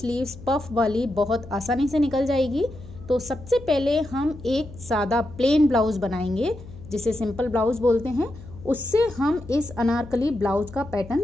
पफ वाली बहुत आसानी से निकल जाएगी। तो सबसे पहले हम एक सादा प्लेन ब्लाउज़ बनाएंगे, जिसे सिंपल ब्लाउज़ बोलते हैं। उससे हम इस अनारकली ब्लाउज़ का पैटर्न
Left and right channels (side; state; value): left; noise; hum, 16 dB below the sound